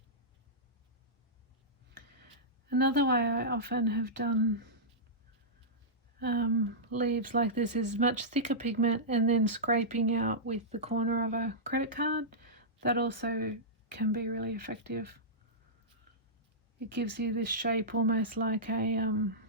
Another way I often have done leaves like this is much thicker pigment and then scraping out with the corner of a credit card. That also can be really effective. It gives you this shape almost like a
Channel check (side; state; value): both; normal; correlation -0.14